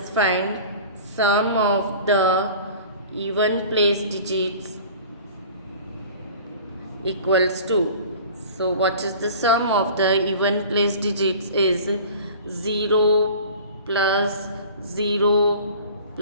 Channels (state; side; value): inverted; both; correlation -0.43